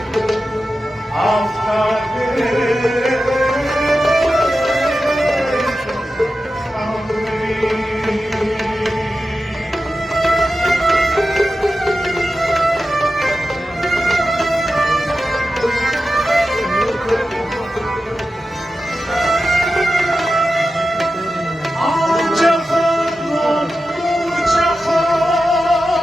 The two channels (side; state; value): both; normal; correlation 0.92